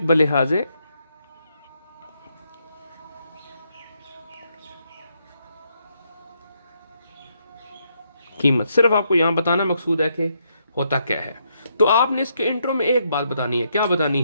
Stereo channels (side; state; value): both; inverted; correlation -0.77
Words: बलिहाजे कीमत, सिर्फ आपको यहां बताना मकसूद है कि होता क्या है। तो आपने इसके इंट्रो में एक बात बतानी है। क्या बतानी